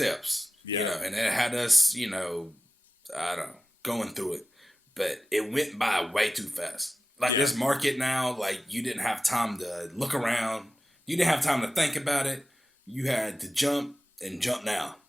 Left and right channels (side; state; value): both; normal; correlation 0.95